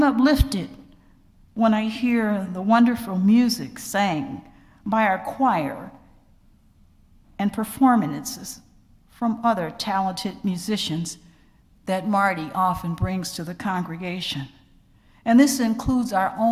uplifted when I hear the wonderful music sang by our choir and performances from other talented musicians that Marty often brings to the congregation. And this includes our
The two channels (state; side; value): identical; both; correlation 1.00